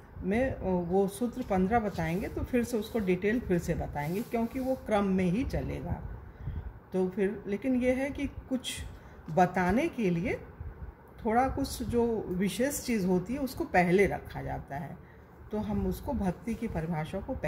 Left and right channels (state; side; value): identical; both; correlation 1.00